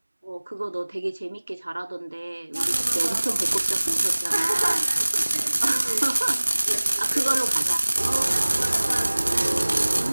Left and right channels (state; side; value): inverted; both; correlation -1.00